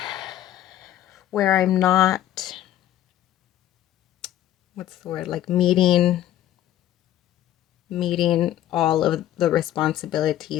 where I'm not, what's the word, like meeting all of the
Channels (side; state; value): right; quieter; 12.5 dB